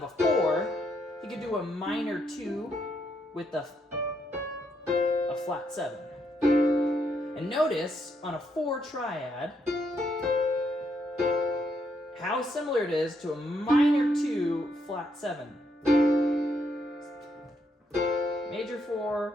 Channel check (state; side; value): normal; both; correlation 0.76